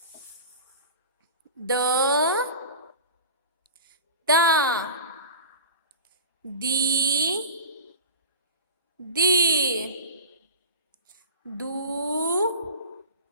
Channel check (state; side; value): inverted; both; correlation -0.34